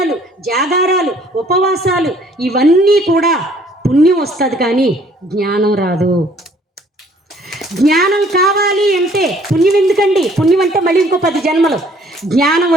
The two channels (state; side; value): normal; both; correlation 0.59